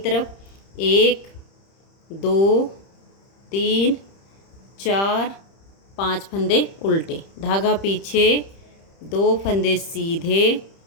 1 2 3 4 5 फंदे उल्टे, धागा पीछे, 2 फंदे सीधे,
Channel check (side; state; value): right; late; 30 ms